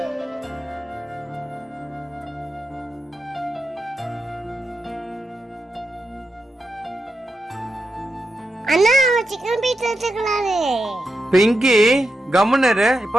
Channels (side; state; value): both; normal; correlation 0.87